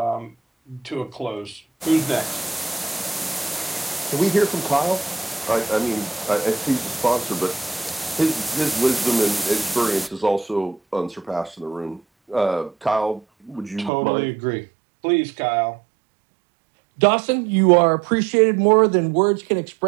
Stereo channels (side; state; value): left; drops out; at 13.9 s